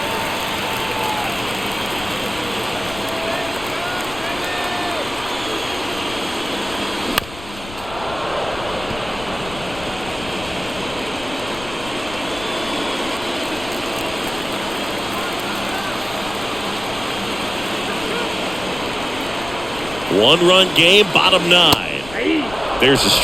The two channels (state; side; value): noise; left; rumble, 15 dB below the sound